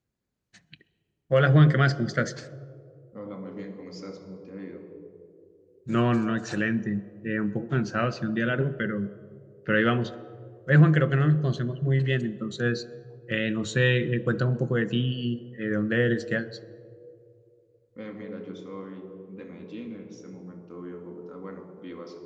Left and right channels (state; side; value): identical; both; correlation 1.00